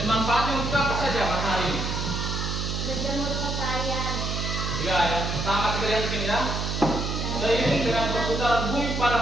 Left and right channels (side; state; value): right; noise; hum, 2 dB below the sound